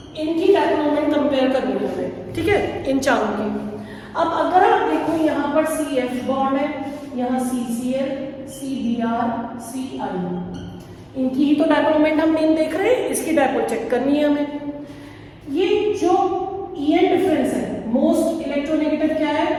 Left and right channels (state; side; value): identical; both; correlation 1.00